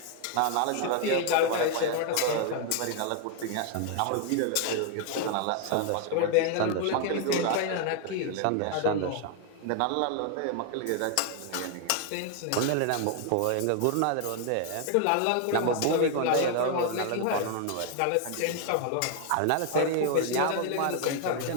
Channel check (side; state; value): both; different; correlation 0.00